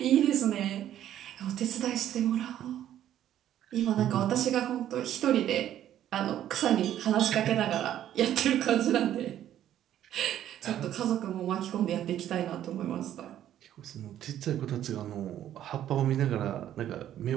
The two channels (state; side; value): quieter; left; 11.5 dB